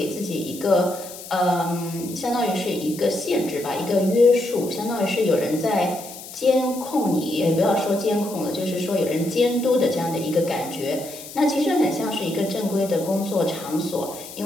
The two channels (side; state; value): left; noise; hiss, 14 dB below the sound